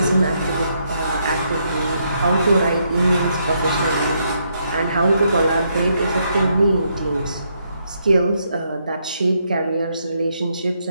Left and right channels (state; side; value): inverted; both; correlation -0.76